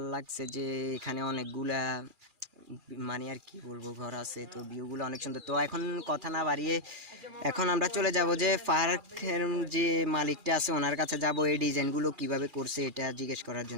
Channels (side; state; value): left; late; 2.4 ms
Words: লাগছে যে এখানে অনেকগুলা মানে আর কি বলবো ঘর আছে, তো ভিউগুলো অনেক সুন্দর। তো এখন কথা না বাড়িয়ে এখন আমরা চলে যাব যে পার্কের যে মালিকটা আছে ওনার কাছে যাব এই ডিজাইনগুলো কিভাবে করছে এটা জিজ্ঞেস করার